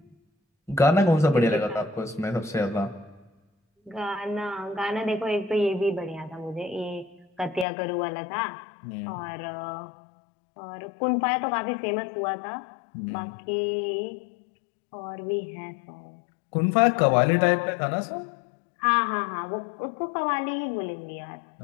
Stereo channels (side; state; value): right; drops out; at 7.7 s